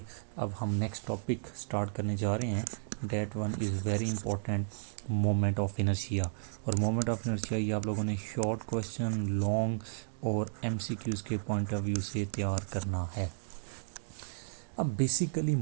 अब हम नेक्स्ट टॉपिक स्टार्ट करने जा रहे हैं। That one is very important, moment of inertia. और मोमेंट ऑफ इनर्शिया ये आप लोगों ने शॉर्ट क्वेश्चन, लॉन्ग और एमसीक्यूज़ के पॉइंट ऑफ व्यू से तैयार करना है। अब basically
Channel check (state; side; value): silent; left; digital silence